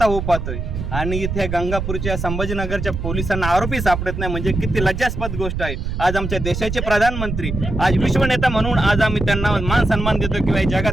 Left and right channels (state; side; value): noise; right; rumble, 4 dB below the sound